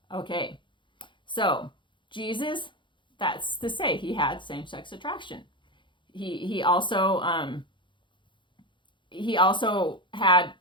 Okay, so Jesus, that's to say he had same-sex attraction. He also had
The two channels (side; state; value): right; late; 0.23 ms